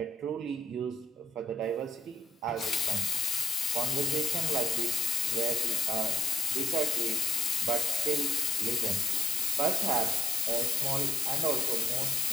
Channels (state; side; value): normal; both; correlation 0.69